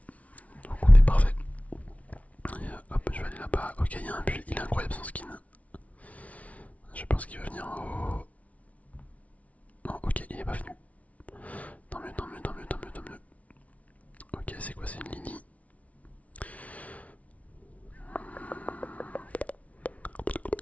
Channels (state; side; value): late; right; 0.067 ms